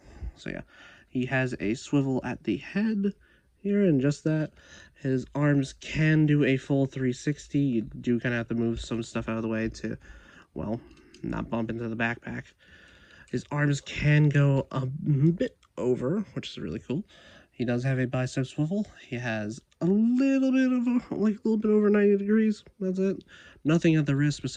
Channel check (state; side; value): identical; both; correlation 1.00